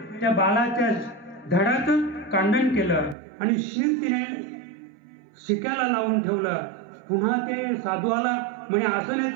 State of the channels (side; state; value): left; drops out; at 3.2 s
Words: त्या बाळाच्या धडाचं कांडण केलं आणि तिने शिक्याला लावून ठेवलं. पुन्हा ते साधू आला म्हणे असं नाही